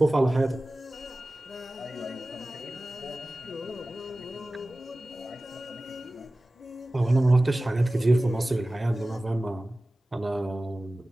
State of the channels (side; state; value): both; normal; correlation 0.97